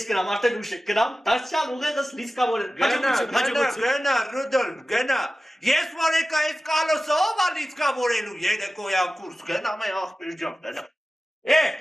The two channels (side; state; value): both; normal; correlation 0.95